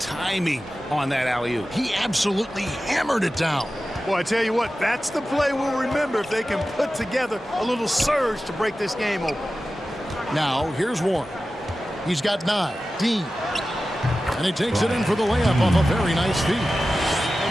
on that alley-oop? He absolutely hammered it down. Boy, I tell you what, that's the play we'll remember if they can put together a little surge to break this game open. Now, here's Warren. He's got 9. Dean. And he takes it in for the layup off a very nice feed.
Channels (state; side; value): normal; both; correlation 0.94